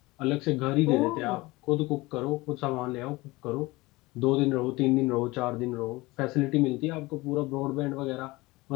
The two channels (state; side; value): quieter; right; 21.5 dB